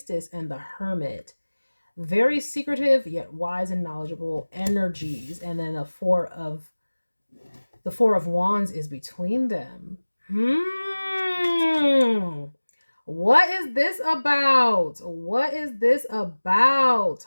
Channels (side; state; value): both; inverted; correlation -1.00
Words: and the Hermit. Very secretive yet wise and knowledgeable energies. And then the Four of Wands is between them. What is this about? What is this about?